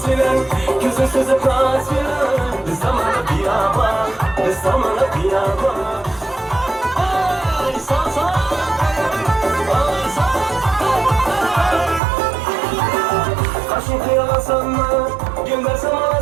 bilen, gözün sızıtmaz bilen. Bir zamana kıyama, bir zamana kıyama. Ay sağ sağ, ay sağ. Kaşın kıyalasan mı, göndersem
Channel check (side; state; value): left; drops out; at 12.0 s